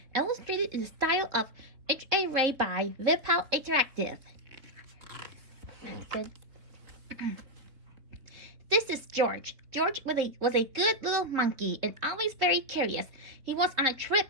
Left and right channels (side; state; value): left; late; 3.6 ms